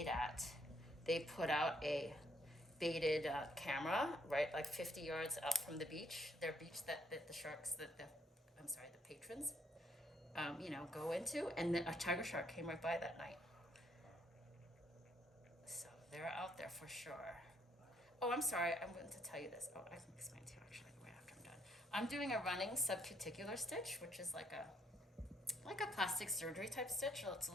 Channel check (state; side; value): normal; both; correlation 0.70